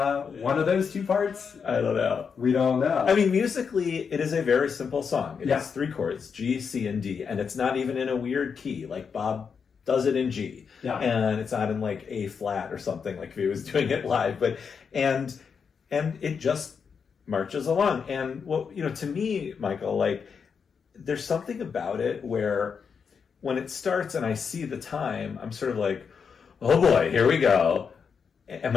one of those two parts? I don't know. We don't know. I mean, musically, it is a very simple song. It Yeah. has 3 chords, G, C, and D, and it's not even in a weird key. Like Bob does it in G, and it's not in like A flat or something like if he was doing it live. But and it just marches along. And what, you know, to me, Michael, like there's something about it where when it starts and I see the time, I'm sort of like, oh boy, here we go. Am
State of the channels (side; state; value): right; quieter; 6.2 dB